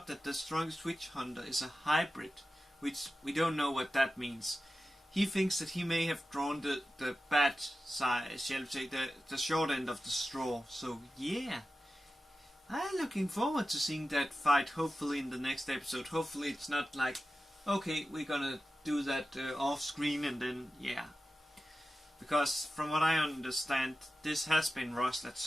that the strongest witch hunter is a hybrid, which we don't know what that means, he thinks that he may have drawn the bad side, shall we say, the short end of the straw. So yeah, I'm looking forward to seeing that fight, hopefully in the next episode. Hopefully it's not like, okay, we're gonna do that off screen and then, yeah. Because from what I understand, this has been rushed at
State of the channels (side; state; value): both; normal; correlation 0.93